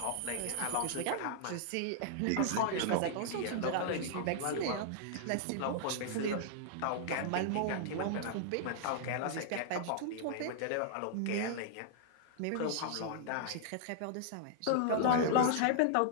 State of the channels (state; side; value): different; both; correlation -0.01